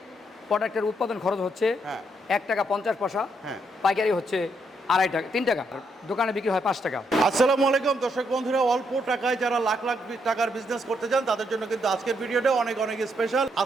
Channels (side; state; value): both; normal; correlation 0.76